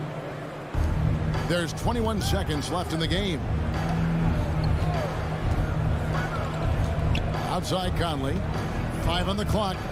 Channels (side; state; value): both; identical; correlation 1.00